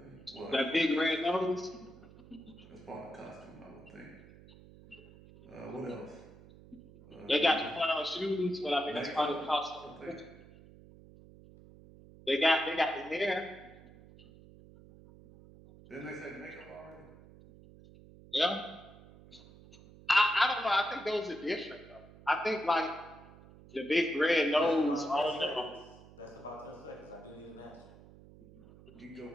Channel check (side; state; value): right; noise; hum, 21 dB below the sound